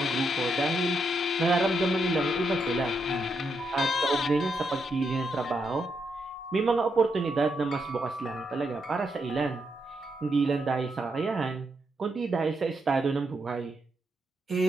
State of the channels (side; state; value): both; normal; correlation 0.81